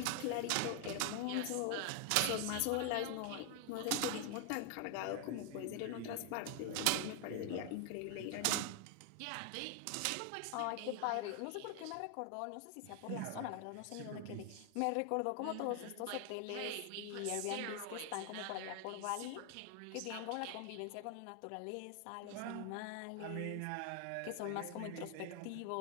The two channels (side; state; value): both; different; correlation 0.00